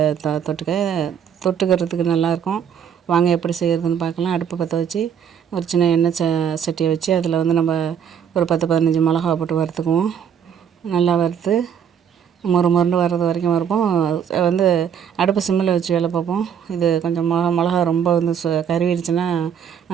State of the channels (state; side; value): quieter; left; 8.2 dB